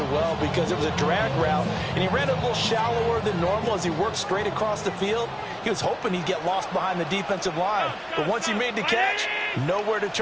well because it was a drag route, and he ran a little shallower than normal as he worked straight across the field. He was hoping he'd get lost behind the defensive line, but once he made the catch, nowhere to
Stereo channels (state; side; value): identical; both; correlation 1.00